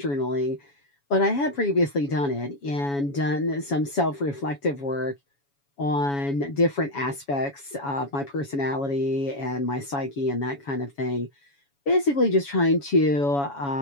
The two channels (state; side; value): late; right; 7.1 ms